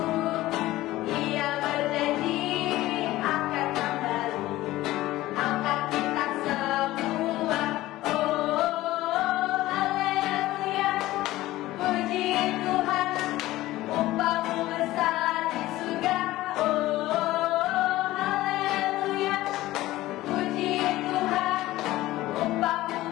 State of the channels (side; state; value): right; quieter; 16.6 dB